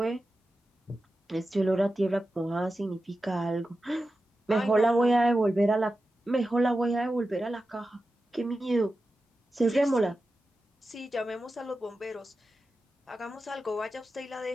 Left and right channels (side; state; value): both; normal; correlation 0.92